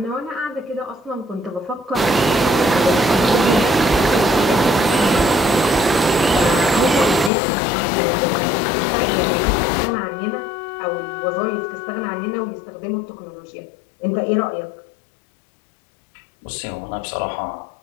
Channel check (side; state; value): right; drops out; at 7.3 s